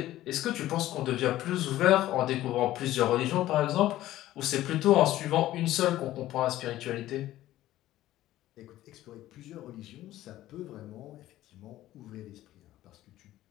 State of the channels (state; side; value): quieter; right; 14.7 dB